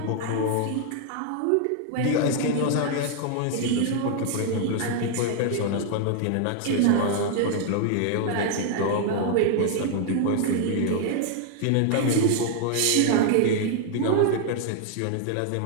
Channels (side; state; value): both; different; correlation 0.00